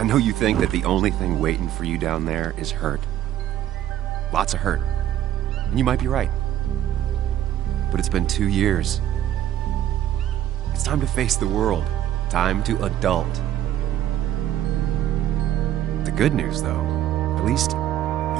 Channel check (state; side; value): quieter; left; 12.0 dB